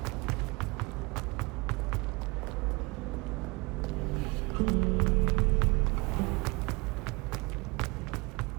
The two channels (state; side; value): quieter; left; 26.6 dB